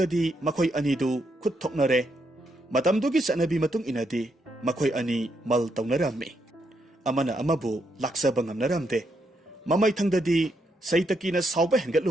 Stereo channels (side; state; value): both; normal; correlation 0.78